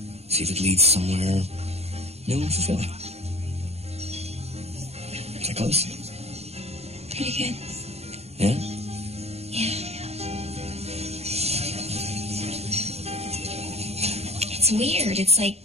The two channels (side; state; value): left; late; 0.30 ms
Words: See if it leads somewhere new and fulfilling. That close? Pretty good. Yeah? Yeah. It's weird. It's like